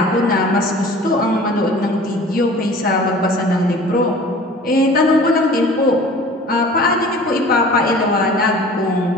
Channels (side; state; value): both; normal; correlation 0.44